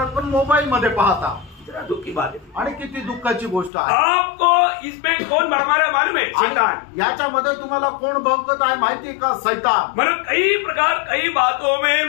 पण मोबाईल मध्ये पाहता. दुख की बात है. आणि किती दुःखाची गोष्ट आहे. आपको इसमें कौन भरमारा मालूम है? शैतान. याच्यामध्ये तुम्हाला कोण भौकत आहे माहिती का? शैतान. मतलब कई प्रकार कई बातों में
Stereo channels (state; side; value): drops out; right; at 3.7 s